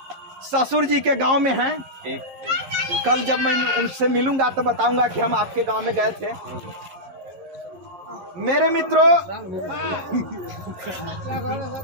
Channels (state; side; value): late; left; 11 ms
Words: ससुर जी के गांव में हैं। कल जब मैं उनसे मिलूंगा तो बताऊंगा कि हम आपके गांव में गए थे। मेरे मित्रों,